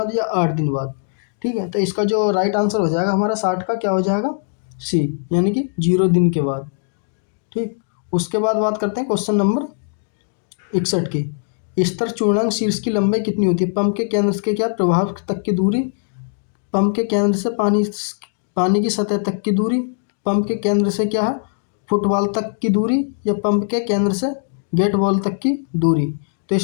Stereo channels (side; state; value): right; silent; digital silence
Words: या 8 दिन बाद। ठीक है, तो इसका जो राइट आंसर हो जाएगा हमारा 60 का क्या हो जाएगा सी, यानी कि 0 दिन के बाद। ठीक, उसके बाद बात करते हैं क्वेश्चन नंबर 61 की। स्तर चूर्णांक शीर्ष की लंबाई कितनी होती है? पंप के केंद्र के क्या प्रभाव तक की दूरी, पंप के केंद्र से पानी की सतह तक की दूरी, पंप के केंद्र से क्या है फुटबॉल तक की दूरी, या पंप के केंद्र से गेट बॉल तक की दूरी। तो